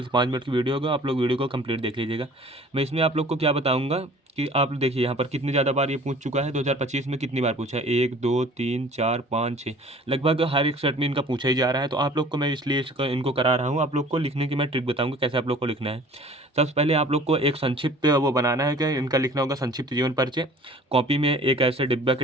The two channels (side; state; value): both; normal; correlation 0.48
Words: से 5 मिनट की वीडियो होगा, आप लोग वीडियो को कंप्लीट देख लीजिएगा। मैं इसमें आप लोग को क्या बताऊंगा कि आप देखिए यहाँ पर कितनी ज़्यादा बार ये पूछ चुका है। 2025 में कितनी बार पूछा है, 1 2 3 4 5 6, लगभग हर एक सेट में इनका पूछा ही जा रहा है। तो आप लोग को मैं इसलिए इनको करा रहा हूँ। आप लोग को लिखने की मैं ट्रिक बताऊंगा कैसे आप लोग को लिखना है। सबसे पहले आप लोग को एक संक्षिप्त वो बनाना है कि इनका लिखना होगा संक्षिप्त जीवन परिचय। कॉपी में एक ऐसे डिब्बा के